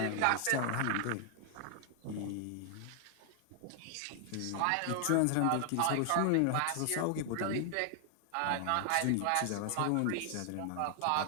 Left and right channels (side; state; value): both; different; correlation 0.00